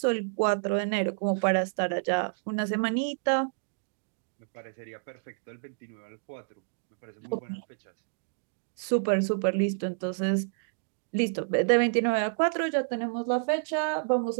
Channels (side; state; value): left; silent; digital silence